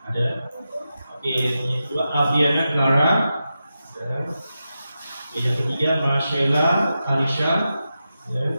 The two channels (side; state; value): both; inverted; correlation -0.90